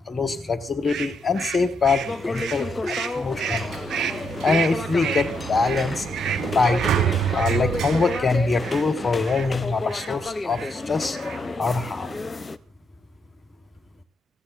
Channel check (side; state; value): both; normal; correlation 0.78